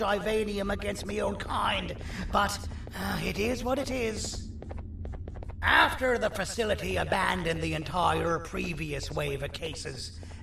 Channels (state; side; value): identical; both; correlation 1.00